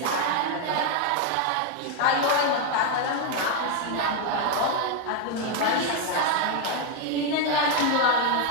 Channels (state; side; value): different; both; correlation 0.01